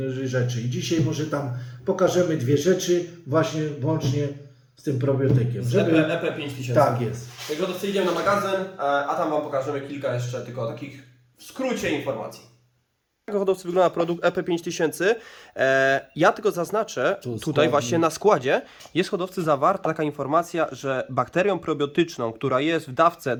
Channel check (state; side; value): identical; both; correlation 1.00